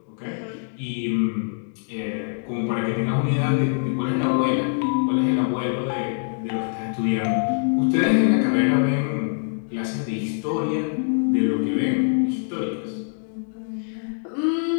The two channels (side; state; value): right; silent; digital silence